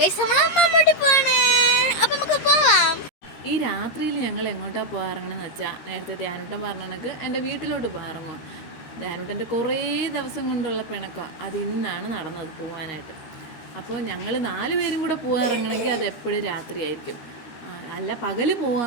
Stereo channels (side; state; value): right; late; 13 ms